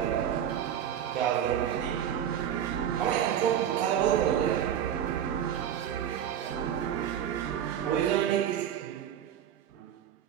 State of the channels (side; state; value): left; quieter; 9.7 dB